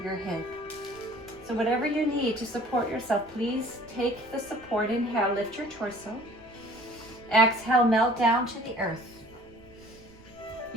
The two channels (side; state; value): right; noise; rumble, 25 dB below the sound